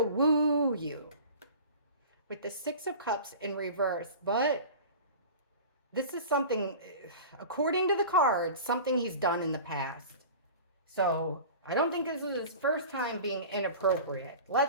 woo you with the Six of Cups in reverse. But this is something, according to the cards, something he's done in the past. So I don't think this is his first time being inappropriate.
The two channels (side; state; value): both; inverted; correlation -0.37